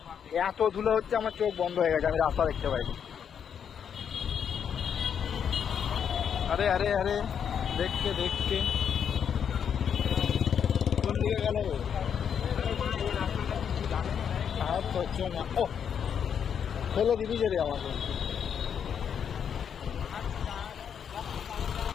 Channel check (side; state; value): right; quieter; 7.9 dB